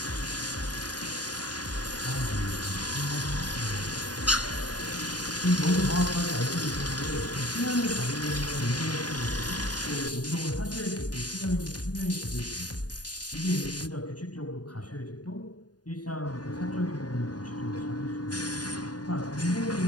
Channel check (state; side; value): late; right; 0.69 ms